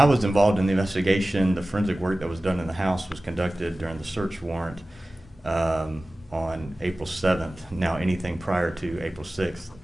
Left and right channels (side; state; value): both; normal; correlation 0.96